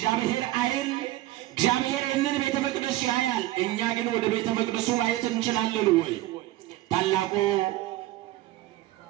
ዓይን እግዚአብሔር ይህንን ቤተ መቅደስ ያያል። እኛ ግን ወደ ቤተ መቅደሱ ማየት እንችላለን ወይ? ታላቁ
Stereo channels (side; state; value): left; quieter; 16.1 dB